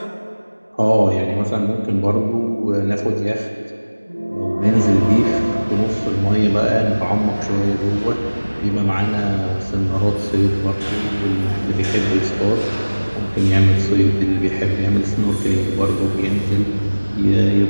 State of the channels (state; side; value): inverted; both; correlation -1.00